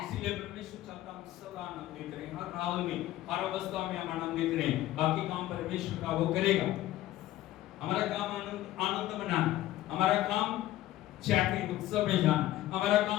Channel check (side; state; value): right; quieter; 14.8 dB